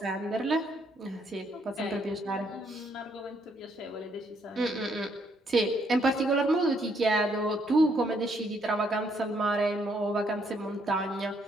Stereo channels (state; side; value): normal; both; correlation 0.71